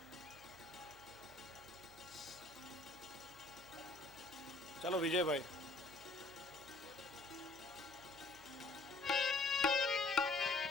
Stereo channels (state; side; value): quieter; right; 3.0 dB